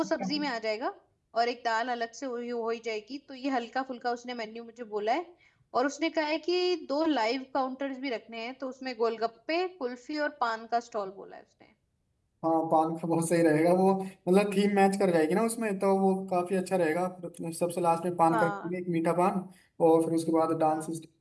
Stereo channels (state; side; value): identical; both; correlation 1.00